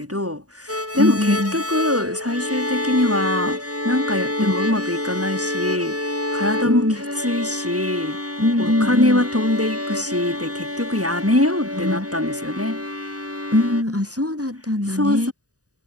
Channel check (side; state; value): left; late; 0.67 ms